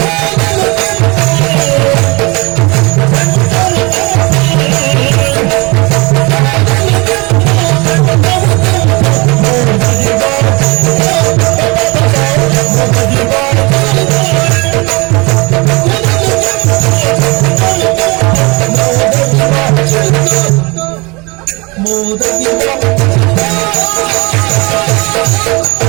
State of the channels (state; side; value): quieter; left; 26.4 dB